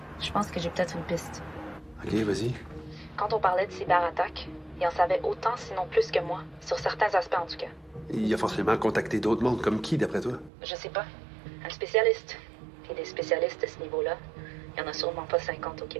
je pense que j'ai peut-être une piste. OK, vas-y. Quand on parlait de cyberattaque, il en savait autant, sinon plus que moi, sur certains aspects en tout cas. Il a forcément contacté d'autres mondes, comme qui, d'après toi? Je sais pas. Un spécialiste. Puis des spécialistes à ce niveau-là, il y en a sûrement pas 50 au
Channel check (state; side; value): drops out; left; at 10.5 s